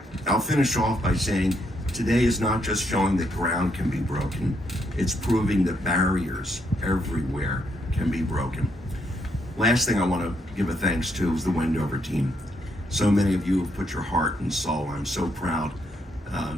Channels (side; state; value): both; normal; correlation 0.76